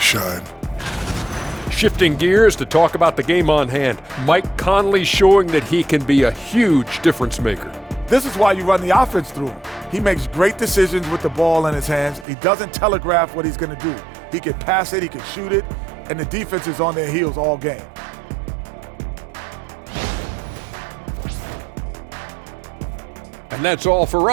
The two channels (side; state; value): left; drops out; at 12.2 s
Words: shine. Shifting gears to talk about the game on hand. Mike Conley showing that he can be a huge difference maker. This is why you run the offense through him. He makes great decisions with the ball in his hands. He doesn't telegraph what he's going to do. He can pass it, he can shoot it, and the defense is on their heels all game. And that's all for